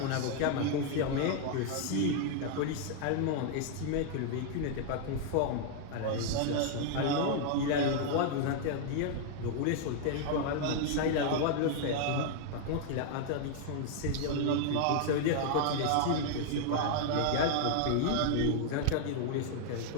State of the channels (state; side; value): different; both; correlation 0.00